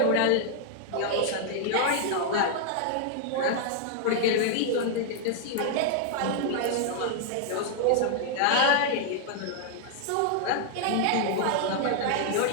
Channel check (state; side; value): different; both; correlation 0.00